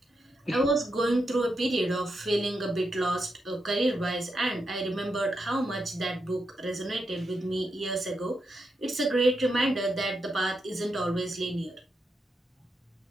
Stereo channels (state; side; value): normal; both; correlation 0.85